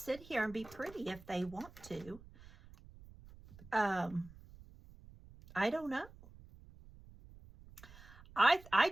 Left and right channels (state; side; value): noise; right; rumble, 20 dB below the sound